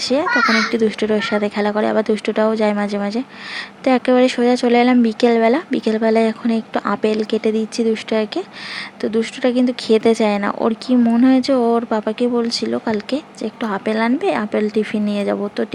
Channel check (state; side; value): identical; both; correlation 1.00